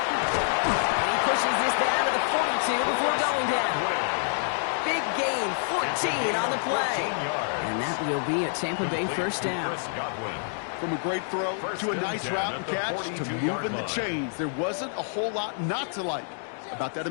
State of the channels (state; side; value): silent; right; digital silence